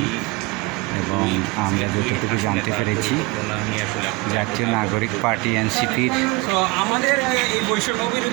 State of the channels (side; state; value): left; quieter; 24.3 dB